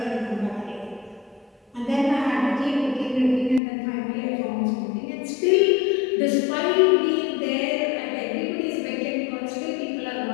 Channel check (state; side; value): drops out; right; at 3.6 s